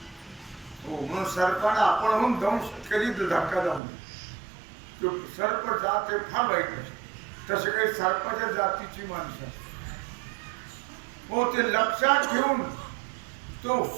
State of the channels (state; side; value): drops out; left; at 3.8 s